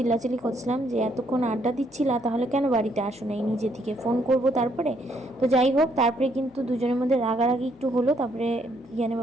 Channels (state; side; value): noise; left; hum, 29 dB below the sound